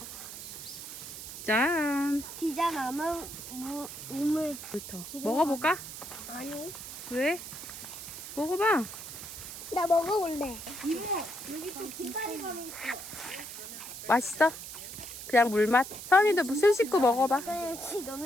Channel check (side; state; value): right; noise; hiss, 10 dB below the sound